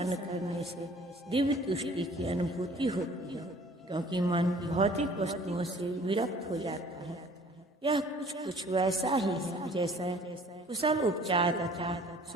करने से दिव्य तुष्टि की अनुभूति होती है, क्योंकि मन भौतिक वस्तुओं से विरक्त हो जाता है। यह कुछ वैसा ही है जैसा कुशल उपचार तथा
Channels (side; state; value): both; normal; correlation 0.52